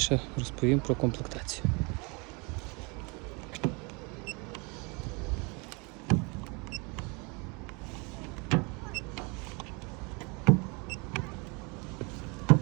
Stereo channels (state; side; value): quieter; left; 30.3 dB